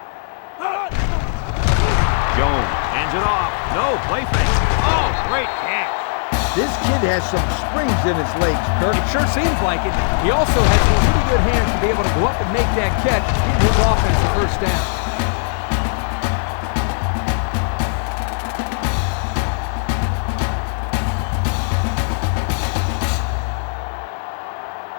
Jones hands it off. No, play fake. Oh, great catch. This kid has some springs in his legs, Kirk. It sure seems like it. He also has some pretty good hands to be able to go up and make that catch, give his offense a first down.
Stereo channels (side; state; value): right; silent; digital silence